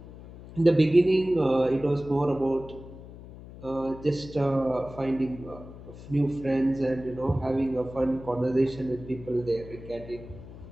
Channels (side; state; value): left; noise; hum, 16 dB below the sound